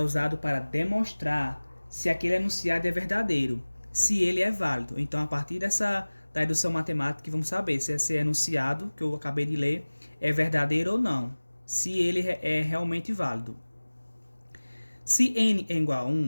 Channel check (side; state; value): both; inverted; correlation -1.00